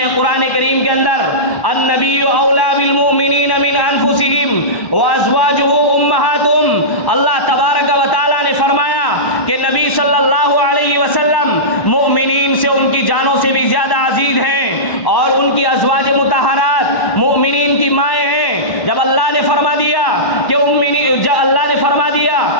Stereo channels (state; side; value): late; right; 1.1 ms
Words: قرآن کریم کے اندر النبی اولیٰ بالمؤمنین من انفسہم وازواجہ امہاتہم۔ اللہ تبارک و تعالیٰ نے فرمایا کہ نبی صلی اللہ علیہ وسلم مؤمنین سے ان کی جانوں سے بھی زیادہ عزیز ہیں، اور ان کی ازواج مطہرات مؤمنین کی مائیں ہیں۔ جب اللہ نے فرما دیا کہ